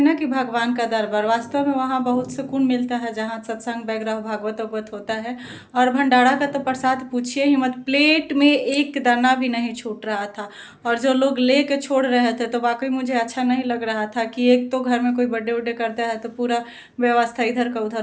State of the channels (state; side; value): identical; both; correlation 1.00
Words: कि भगवान का दरबार, वास्तव में वहाँ बहुत सुकून मिलता है जहाँ सत्संग वगैरह भागवत होता है। और भंडारा का तो प्रसाद पूछिए ही मत, प्लेट में एक दाना भी नहीं छूट रहा था। और जो लोग ले के छोड़ रहे थे तो वाकई मुझे अच्छा नहीं लग रहा था कि एक तो घर में कोई बर्थडे उड्डे करता है तो पूरा व्यवस्था इधर का